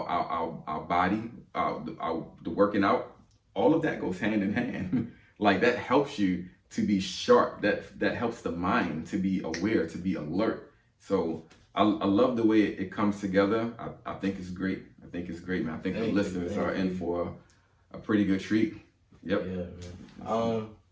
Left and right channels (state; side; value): identical; both; correlation 1.00